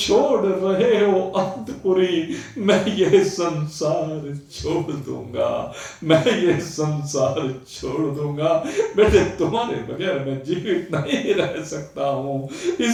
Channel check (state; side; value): identical; both; correlation 1.00